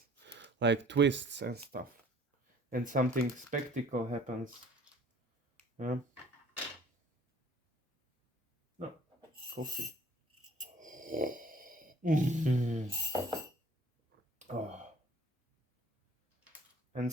like twists and stuff. And something spectacle happens. Yeah. No, coffee. Oh. And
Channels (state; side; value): normal; both; correlation 0.53